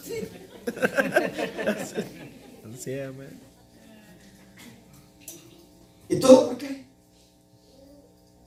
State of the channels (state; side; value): identical; both; correlation 1.00